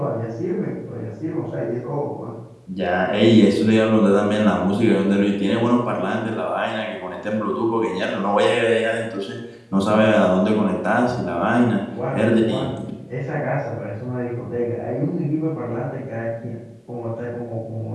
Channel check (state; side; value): identical; both; correlation 1.00